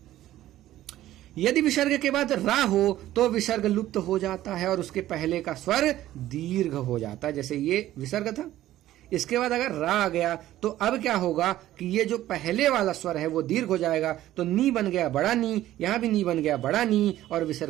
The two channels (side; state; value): left; quieter; 14.0 dB